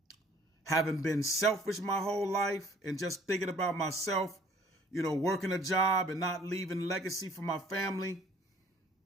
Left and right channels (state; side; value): normal; both; correlation 0.55